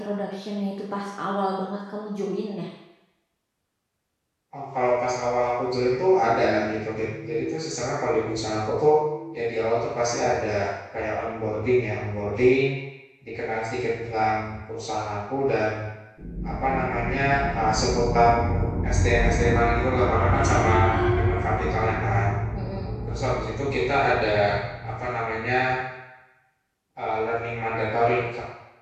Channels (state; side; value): identical; both; correlation 1.00